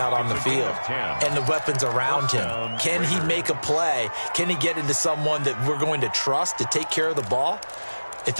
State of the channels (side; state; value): both; inverted; correlation -1.00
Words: on the field and the weapons around him. Can he make a play? Can he get into someone that we're going to trust to take care of the ball? If